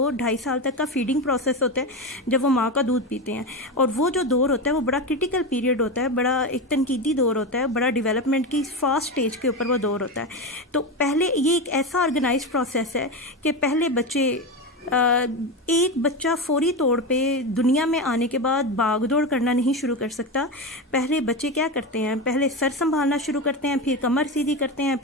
साल तक का फीडिंग प्रोसेस होता है, जब वो माँ का दूध पीते हैं। और वो जो दौर होता है वो बड़ा क्रिटिकल पीरियड होता है, बड़ा एक तनकीदी दौर होता है, बड़ा डेवलपमेंट की फास्ट स्टेज के ऊपर वो दौर होता है। तो पहले ये एक ऐसा ऑर्गेनाइज्ड प्रोसेस है कि पहले बच्चे एक बच्चा फौरी तौर पे दुनिया में आने के बाद भाग दौड़ करना नहीं शुरू कर सकता। पहले बच्चे क्या करते हैं? पहले सर संभालना शुरू करते हैं, फिर कमर सीधी करते हैं,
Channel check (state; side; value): normal; both; correlation 0.18